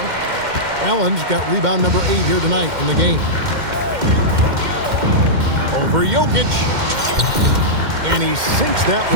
Allen's got rebound number 8 here tonight in the game. Over Jokic. And he sinks that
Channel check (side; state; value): left; late; 2.1 ms